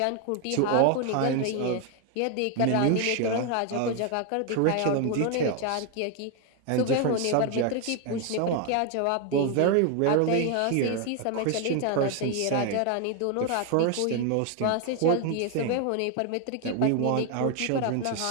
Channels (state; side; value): different; both; correlation 0.01